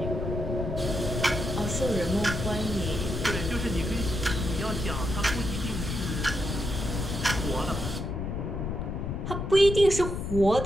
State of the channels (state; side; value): noise; left; rumble, 3 dB below the sound